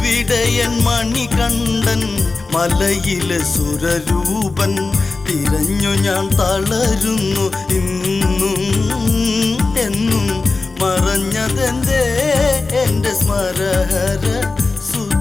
മണികണ്ഠൻ മലയിലെ സുരരൂപൻ. തിരഞ്ഞു ഞാൻ തളരുന്നു ഇന്നും എന്നും, മറഞ്ഞതെന്തേ എന്റെ സ്മരഹര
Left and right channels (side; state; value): right; quieter; 3.8 dB